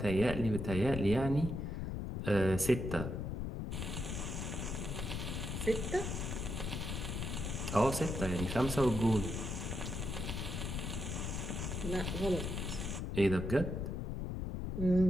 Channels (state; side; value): noise; left; rumble, 3 dB below the sound